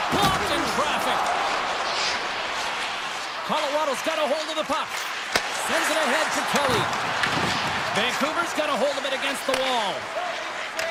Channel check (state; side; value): identical; both; correlation 1.00